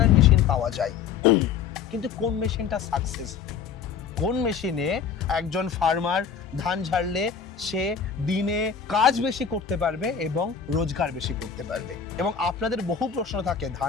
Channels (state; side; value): quieter; right; 6.8 dB